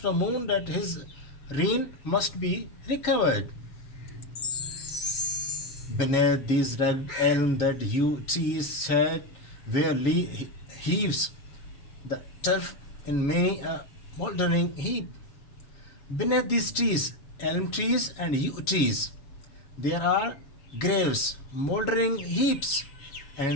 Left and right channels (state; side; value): late; right; 7.3 ms